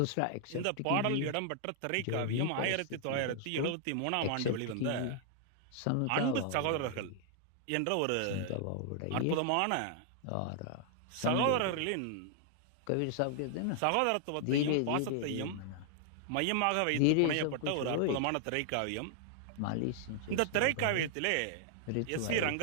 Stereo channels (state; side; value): different; both; correlation 0.00